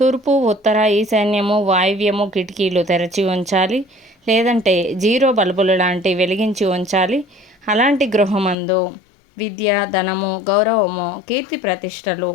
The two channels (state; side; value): drops out; right; at 8.6 s